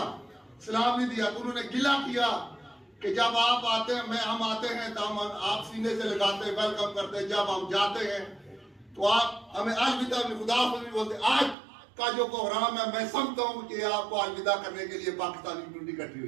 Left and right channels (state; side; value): drops out; left; at 11.6 s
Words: सलाम नहीं दिया, तो उन्होंने गिला किया कि जब आप आते हैं, हम आते हैं तो हम आप सीने से लगाते हैं, वेलकम करते हैं, जब हम जाते हैं तो आप हमें अलविदा खुदा नहीं बोलते. आज का जो प्रोग्राम है, मैं समझता हूँ कि आपको अलविदा करने के लिए पाकिस्तानी कम्युनिटी इकट्ठी